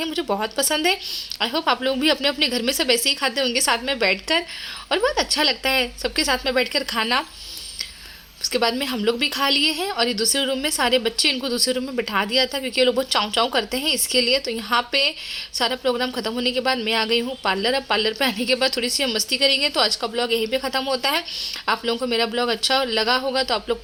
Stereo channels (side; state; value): both; identical; correlation 1.00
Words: मुझे बहुत पसंद है। आई होप आप लोग भी अपने अपने घर में सब ऐसे ही खाते होंगे साथ में बैठकर, और बहुत अच्छा लगता है सबके साथ में बैठकर खाना। उसके बाद में हम लोग भी खा लिए हैं और ये दूसरे रूम में सारे बच्चे, इनको दूसरे रूम में बिठा दिया था क्योंकि ये लोग बहुत चाव चाव करते हैं इसके लिए। तो यहाँ पे सारा प्रोग्राम खत्म होने के बाद मैं आ गई हूँ पार्लर। अब पार्लर पे आने के बाद थोड़ी सी हम मस्ती करेंगे। तो आज का ब्लॉग यहीं पे ख़त्म होता है। आप लोगों को मेरा ब्लॉग अच्छा लगा होगा तो आप लोग